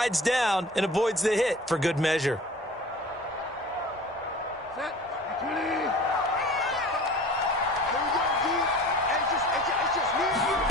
down and avoids the hit for good measure.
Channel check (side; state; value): both; normal; correlation 0.42